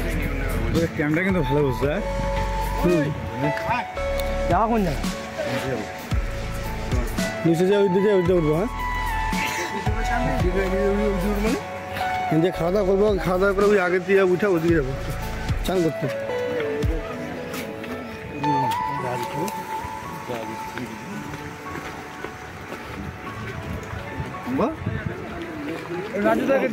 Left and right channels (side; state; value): both; identical; correlation 1.00